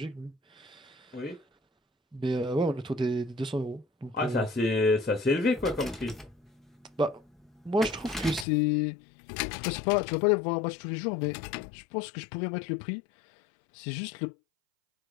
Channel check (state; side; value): drops out; right; at 8.5 s